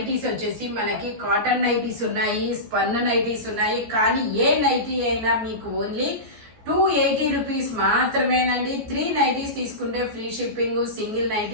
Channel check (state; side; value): late; left; 14 ms